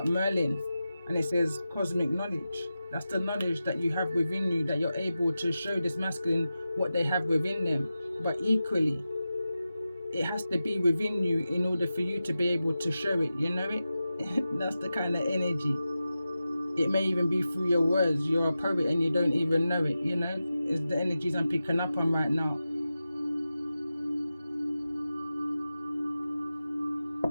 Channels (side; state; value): both; inverted; correlation -0.93